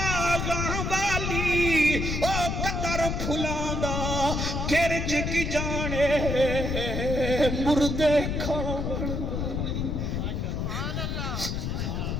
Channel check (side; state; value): left; noise; rumble, 1 dB below the sound